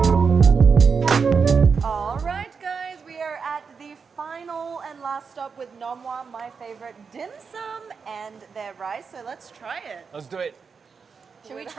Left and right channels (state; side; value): quieter; left; 5.6 dB